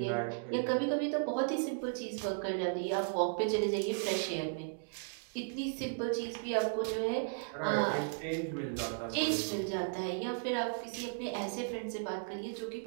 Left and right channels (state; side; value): silent; left; digital silence